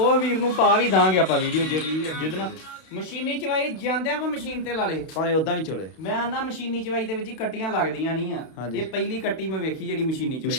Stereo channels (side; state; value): right; late; 31 ms